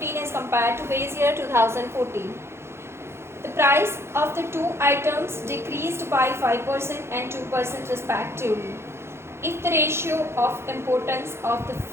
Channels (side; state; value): left; late; 0.12 ms